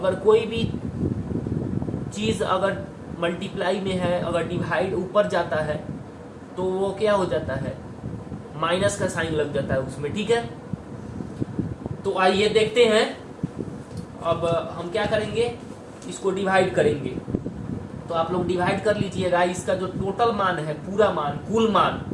कोई भी चीज अगर मल्टीप्लाई में है, अगर डिवाइड ऊपर जाता है तो वो क्या हो जाता है, माइनस का साइन लग जाता है उसमें। ठीक है, तो आइए देखते हैं। अब हम क्या करेंगे, इसको डिवाइड करेंगे। तो आप लोग डिवाइड कर लीजिएगा। इसका जो टोटल मान है, पूरा मान, कुल मान,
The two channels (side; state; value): both; identical; correlation 1.00